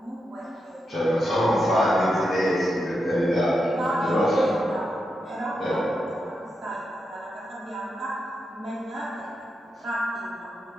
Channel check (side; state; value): both; normal; correlation 0.86